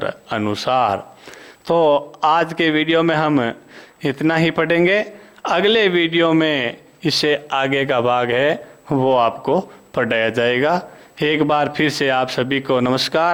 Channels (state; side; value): identical; both; correlation 1.00